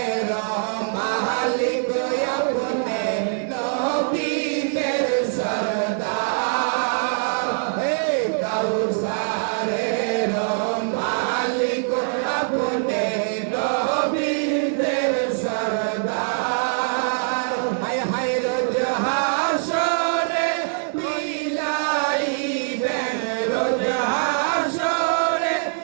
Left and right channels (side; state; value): left; silent; digital silence